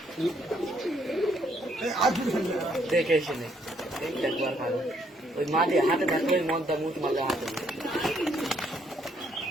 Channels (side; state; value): both; normal; correlation 0.69